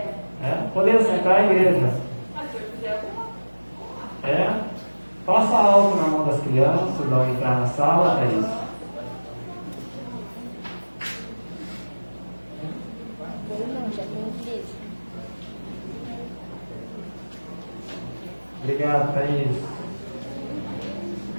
Podemos sentar a igreja. Passa álcool na mão das crianças, ao entrar na sala, é isso. Obrigado, Thaís.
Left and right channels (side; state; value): both; inverted; correlation -1.00